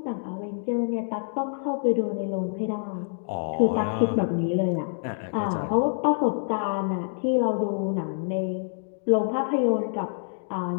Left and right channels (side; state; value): right; silent; digital silence